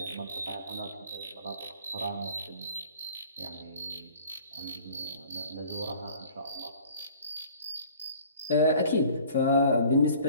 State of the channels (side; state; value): both; inverted; correlation -0.49